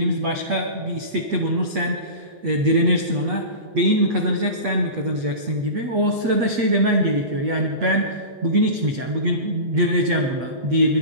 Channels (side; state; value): left; late; 8.4 ms